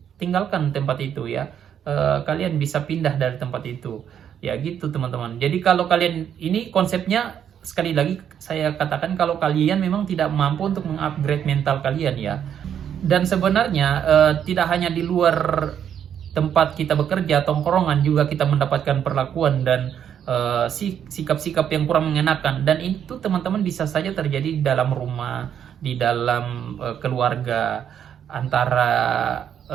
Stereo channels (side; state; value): left; quieter; 9.0 dB